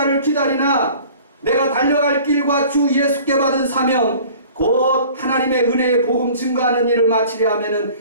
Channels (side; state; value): both; inverted; correlation -0.47